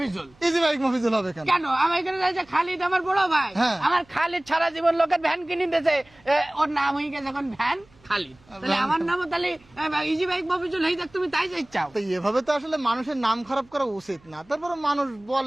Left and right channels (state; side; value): noise; right; hum, 29 dB below the sound